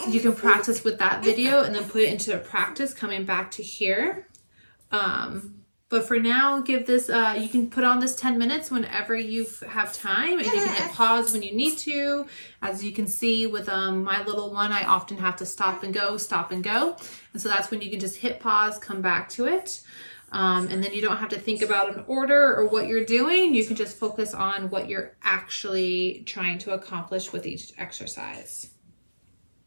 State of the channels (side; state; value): both; inverted; correlation -1.00